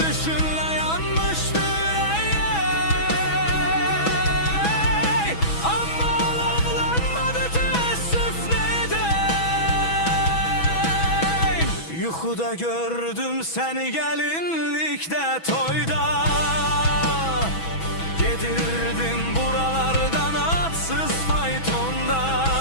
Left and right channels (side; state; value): right; late; 6.1 ms